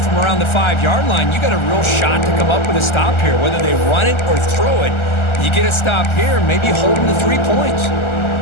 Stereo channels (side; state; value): right; late; 1.3 ms